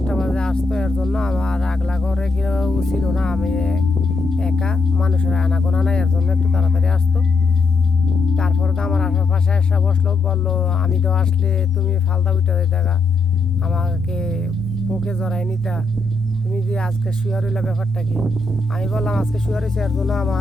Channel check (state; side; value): quieter; right; 3.5 dB